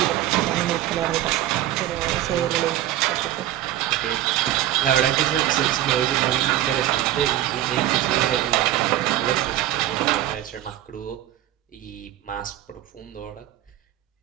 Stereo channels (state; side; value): quieter; left; 13.3 dB